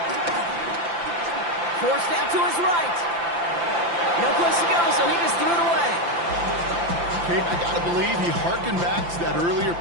Forced out to his right. No place to go, so he just threw it away. Kate, I got to believe he harkened back to that earlier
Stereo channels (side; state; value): left; late; 5.8 ms